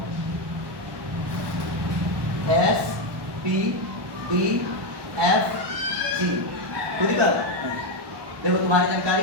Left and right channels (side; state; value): left; late; 1.1 ms